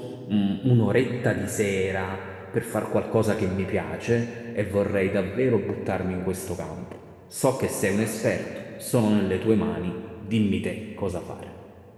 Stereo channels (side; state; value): both; identical; correlation 1.00